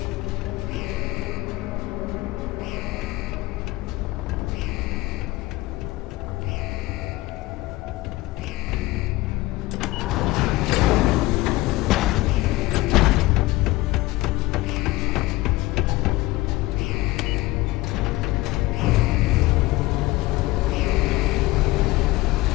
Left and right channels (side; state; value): right; quieter; 19.6 dB